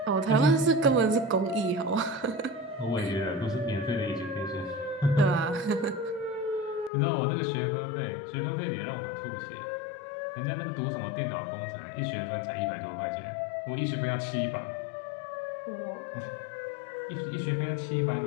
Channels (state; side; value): drops out; right; at 6.9 s